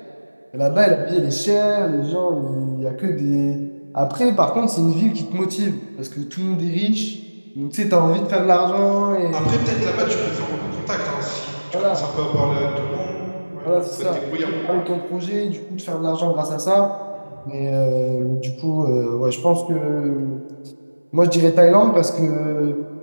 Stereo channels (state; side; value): inverted; both; correlation -1.00